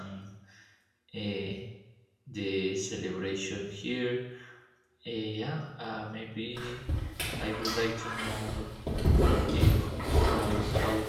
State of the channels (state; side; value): identical; both; correlation 1.00